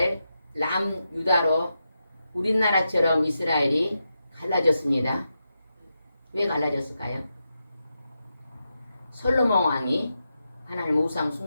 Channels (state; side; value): inverted; both; correlation -0.87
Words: 남유다로 우리나라처럼 이스라엘이 갈라졌습니다. 왜 갈라졌을까요? 솔로몬 왕이 하나님 우상